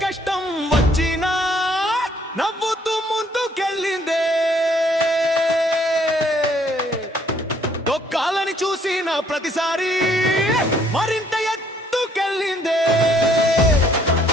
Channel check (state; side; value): normal; both; correlation 0.65